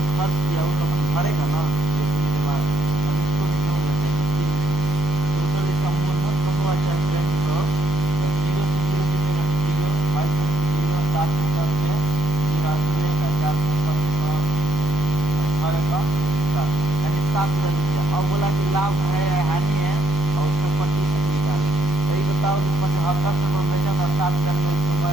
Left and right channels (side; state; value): both; normal; correlation 0.73